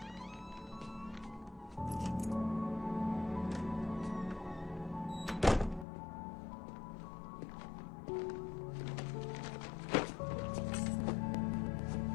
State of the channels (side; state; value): right; drops out; at 5.9 s